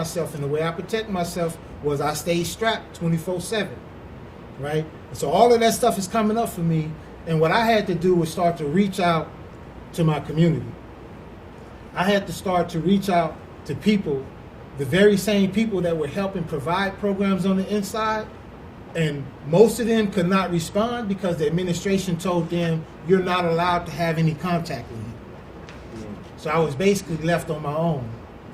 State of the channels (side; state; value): both; identical; correlation 1.00